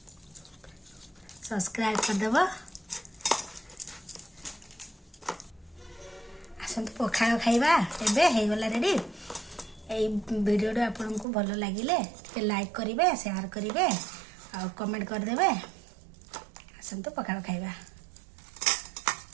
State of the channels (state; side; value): drops out; left; at 11.2 s